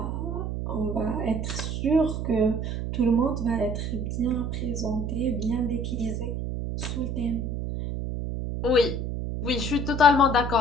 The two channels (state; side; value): noise; right; hum, 3 dB below the sound